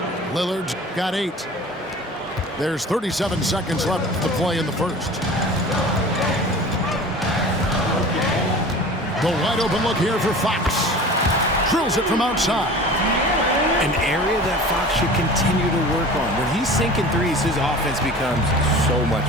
Lillard's got 8. There's 37 seconds left to play in the first. The wide open look here for Fox. Drills it from outside. An area that Fox should continue to work on. When he's sinking threes, his offense becomes so much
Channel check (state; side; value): normal; both; correlation 0.39